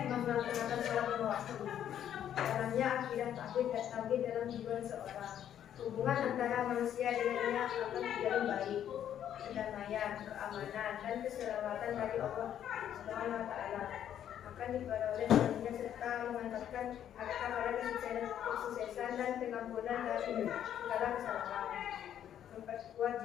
melaksanakan salat lima waktu? Caranya akidah takbir dalam jiwa seorang. Hubungan antara manusia dengannya akan menjadi baik. Kedamaian, keamanan, dan keselamatan dari Allah Subhanahu wa taala akan diperoleh darinya, serta mengantarkan mereka pada kesuksesan dan pengampunan dari segala kesalahan. Memperkuat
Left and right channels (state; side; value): quieter; right; 10.2 dB